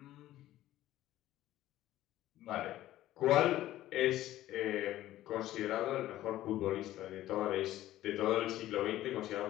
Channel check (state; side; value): quieter; right; 14.4 dB